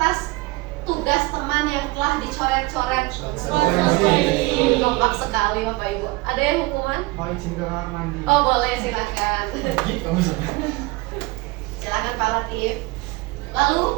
tugas teman yang telah dicoret-coret. Kompak sekali Bapak Ibu. Ada yang hukuman? Mau izin ke kamar mandi. Oh boleh, silakan. Silakan Pak Latif. Lalu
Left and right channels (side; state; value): left; quieter; 22.5 dB